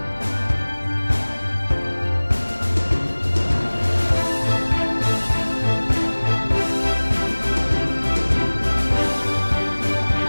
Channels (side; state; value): both; inverted; correlation -1.00